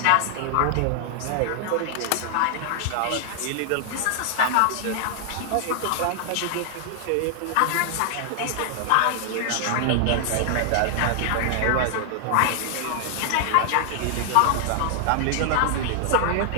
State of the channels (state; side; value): different; both; correlation 0.00